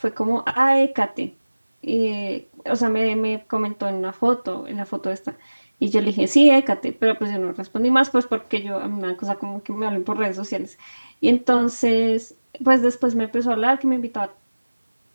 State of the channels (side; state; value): both; inverted; correlation -1.00